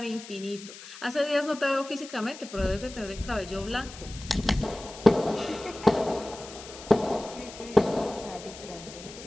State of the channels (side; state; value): left; noise; hiss, 15 dB below the sound